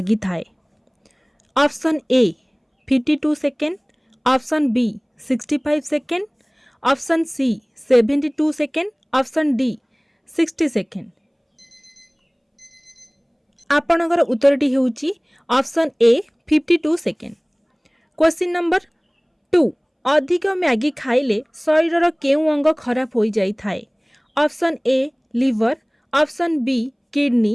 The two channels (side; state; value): both; identical; correlation 1.00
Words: थाए। Option A 52 second, option B 65 second, option C 72 second, option D 60 second. आपणकर उत्तरटी हेउची option A 52 second. Question number 2 अधिक मैगी खाइले शरीर केउ अंग खराब हो जाई थाए। Option A liver, option B